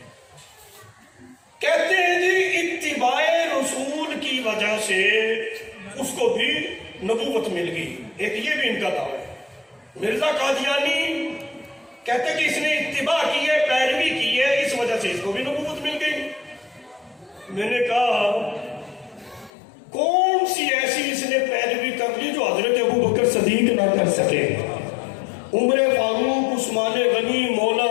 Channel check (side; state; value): right; drops out; at 19.5 s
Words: کہتے ہیں جی اتباع رسول کی وجہ سے اس کو بھی نبوت مل گئی، ایک یہ بھی ان کا دعویٰ ہے۔ مرزا قادیانی کہتے کہ اس نے اتباع کی ہے، پیروی کی ہے، اس وجہ سے اس کو بھی نبوت مل گئی۔ میں نے کہا کون سی ایسی اس نے پیروی کر لی جو حضرت ابوبکر صدیق نہ کر سکے؟ عمر فاروق، عثمان غنی، مولا